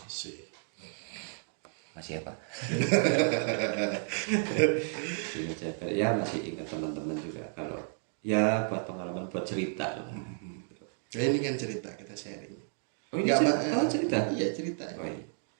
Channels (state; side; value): silent; left; 56 dB below the other